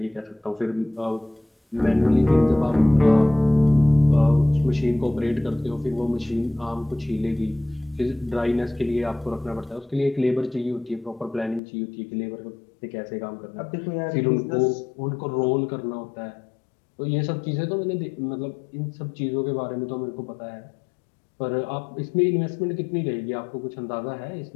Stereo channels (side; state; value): right; drops out; at 11.6 s